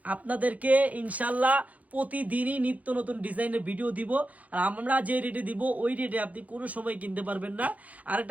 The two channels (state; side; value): late; left; 0.072 ms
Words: আপনাদেরকে ইনশাল্লাহ প্রতিদিনই নিত্য নতুন ডিজাইনের ভিডিও দিব। আর আমরা যে রেটে দিব ওই রেটে আপনি কোনো সময় কিনতে পারবেন না।